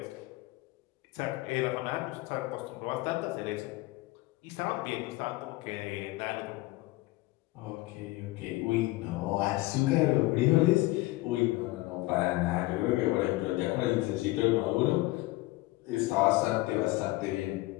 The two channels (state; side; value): quieter; right; 20.0 dB